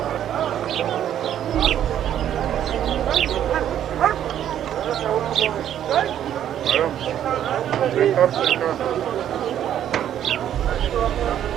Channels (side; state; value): left; quieter; 10.5 dB